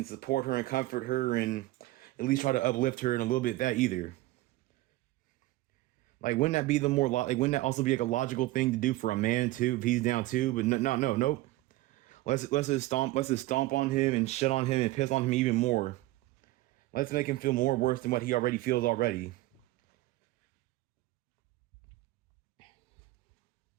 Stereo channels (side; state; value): left; quieter; 18.1 dB